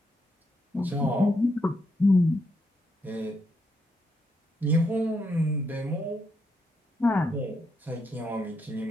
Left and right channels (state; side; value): normal; both; correlation 0.79